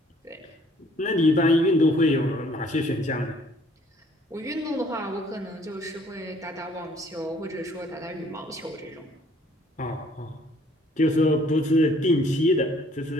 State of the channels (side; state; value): both; normal; correlation 0.60